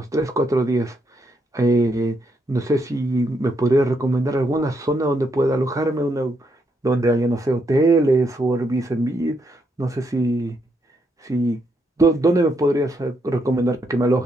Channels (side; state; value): both; normal; correlation 0.77